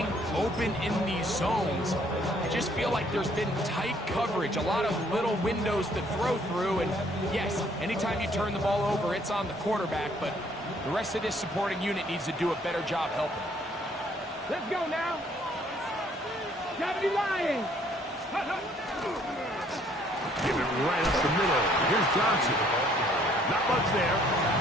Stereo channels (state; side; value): normal; both; correlation 0.63